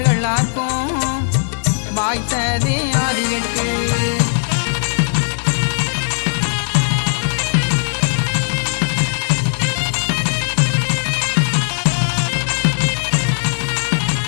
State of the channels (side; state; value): right; silent; 66 dB below the other